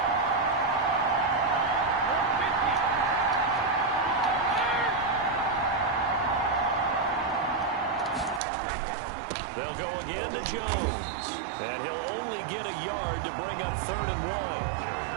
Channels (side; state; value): left; drops out; at 8.4 s